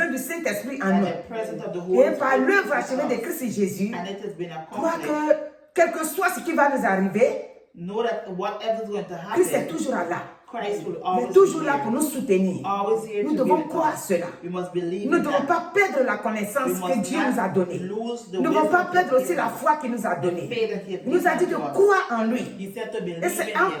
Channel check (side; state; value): both; identical; correlation 1.00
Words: du Saint-Esprit en that nous. the presence of the Et Holy par Spirit l'œuvre is achevée de with us. Christ Jésus, And it has been crois accomplished. que quel que soit ce qui va nous arriver, Know that whatever is going to Christ est happen, toujours là. Christ will Il est always toujours be là here. pour nous soutenir. Always here Nous to devons give it croire us. cela. We must believe Nous ne in devons that. pas perdre la connaissance We que must Dieu nous a not donnée. lose the Nous ne devons wisdom pas He perdre has aussi la given us. foi qu'il nous a donnée. The faith that He has Il nous a dit given de to us. croire en lui. He said to believe Et c'est in en Him